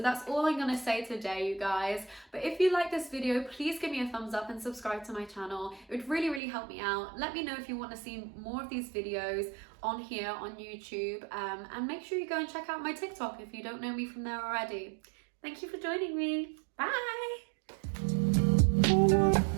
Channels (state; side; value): drops out; left; at 6.4 s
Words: all I'm gonna say today, you guys. But if you like this video, please give me a thumbs up and subscribe to my channel. It would really, really help me out. Let me know if you want to see more of these videos on here on YouTube, and make sure you go and check out my TikTok if you don't know me from there already. Thank you for joining me. Bye!